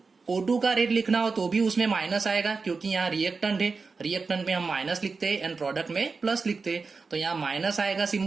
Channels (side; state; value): left; quieter; 4.5 dB